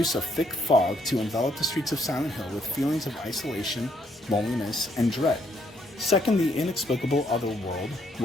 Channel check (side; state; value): both; normal; correlation 0.71